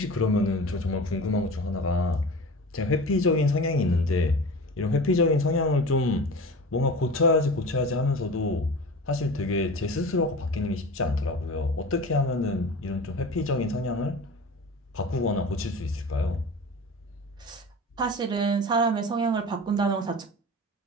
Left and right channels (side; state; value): both; normal; correlation 0.34